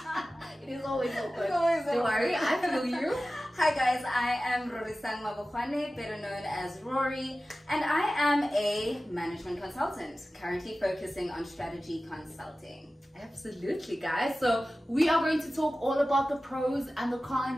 It is always awkward. Don't worry, I feel you. Hi guys, I am Rory Sang Mabokwane, better known as Rory, and I am a management consultant, currently focusing on strategy consulting. Absolutely, guys. So we are going to talk all about the pros and the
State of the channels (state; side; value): normal; both; correlation 0.95